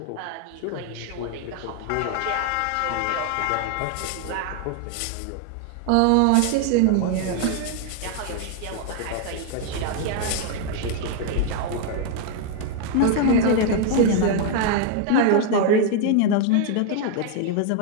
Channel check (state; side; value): different; both; correlation 0.00